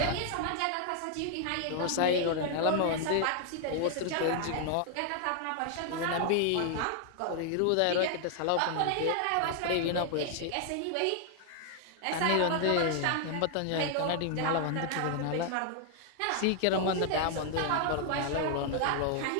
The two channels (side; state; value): both; different; correlation 0.00